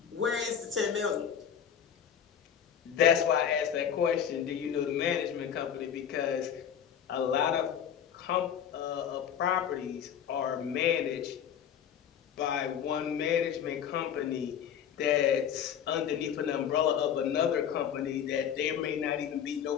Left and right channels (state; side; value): quieter; right; 8.7 dB